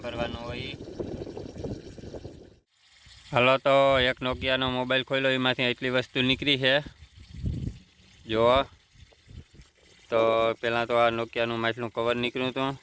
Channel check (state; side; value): identical; both; correlation 1.00